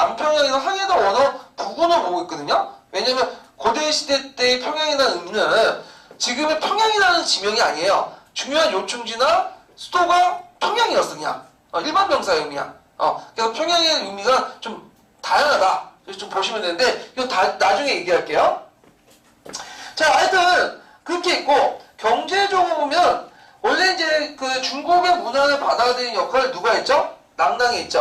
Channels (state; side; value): identical; both; correlation 1.00